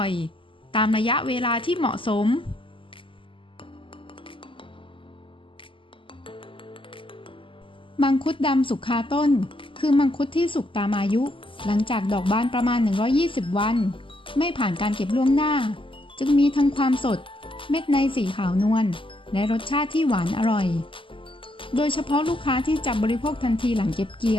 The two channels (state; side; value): late; right; 0.25 ms